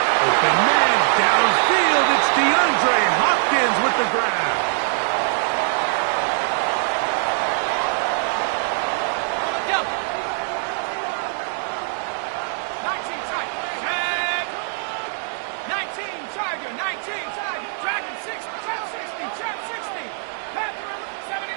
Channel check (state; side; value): silent; left; 63 dB below the other